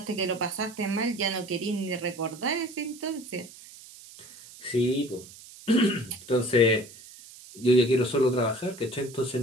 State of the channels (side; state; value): right; noise; hiss, 19 dB below the sound